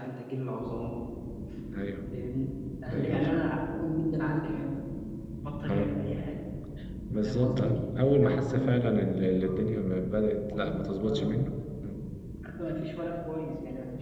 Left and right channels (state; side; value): identical; both; correlation 1.00